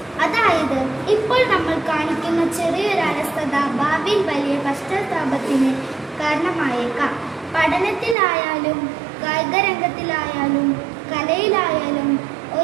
അതായത് ഇപ്പോൾ നമ്മൾ കാണിക്കുന്ന ചെറിയൊരു അലസത ഭാവിയിൽ വലിയ പശ്ചാത്താപത്തിന് കാരണമായേക്കാം. പഠനത്തിലായാലും കായികരംഗത്തിലായാലും കലയിലായാലും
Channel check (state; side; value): drops out; left; at 8.2 s